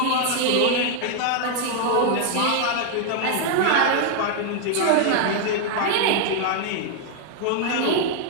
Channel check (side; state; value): both; different; correlation 0.00